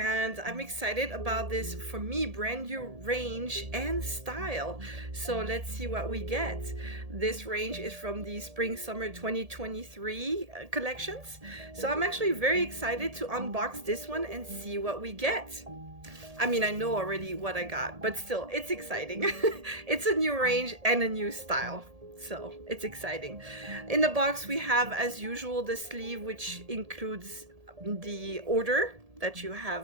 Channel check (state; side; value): late; left; 1.7 ms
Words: I'm excited about this, for me, brand new range and style. So let's see what we get. This range is from the Spring Summer 2023 collections. So I'm actually very excited to unbox this one and see what we get. I mean, I know already what I got, but still, it's exciting. It's a new range and a new style. So it's exciting. In the box, we have, as usual, the sleeve, which includes the order that you